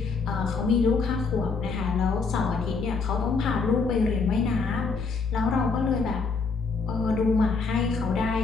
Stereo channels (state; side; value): quieter; right; 4.6 dB